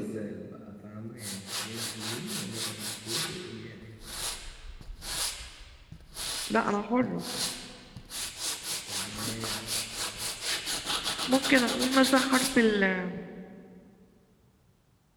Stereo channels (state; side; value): identical; both; correlation 1.00